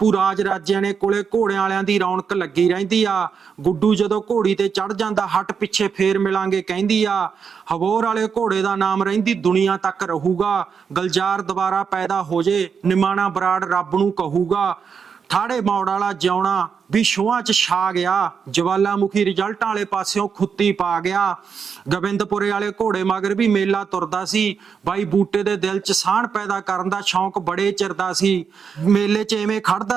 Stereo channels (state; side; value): quieter; left; 6.4 dB